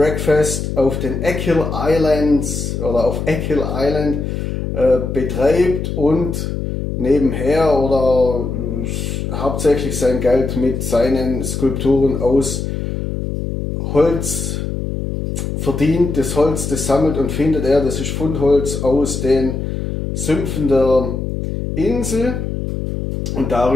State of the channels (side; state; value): left; noise; hum, 4 dB below the sound